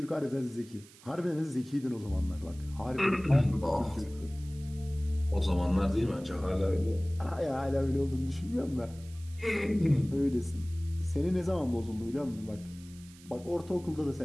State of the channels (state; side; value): noise; right; hiss, 23 dB below the sound